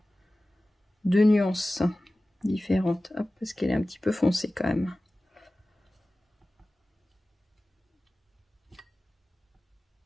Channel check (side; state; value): both; normal; correlation 0.97